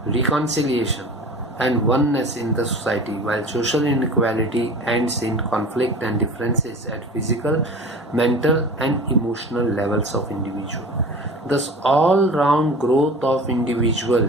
reconciliation, and oneness in the society, while social inequality ends in conflict and differences at physical, mental, and emotional levels of individual. Thus, all-round growth of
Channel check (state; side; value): normal; both; correlation 0.38